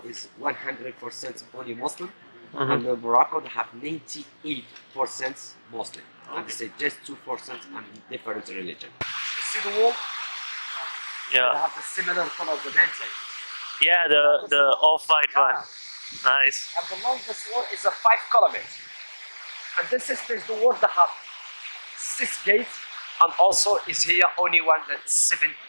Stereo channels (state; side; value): inverted; both; correlation -1.00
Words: 100% only Muslim, and Morocco they have 98% Muslim, and they say just 2% and different religion. You see the wall? They Yeah. have the similar color of the mountain. Yeah. The off-white one. Nice. And the longest wall is a 5 kilometers. And this is the wall that have 6 gates, and also is here only one that 7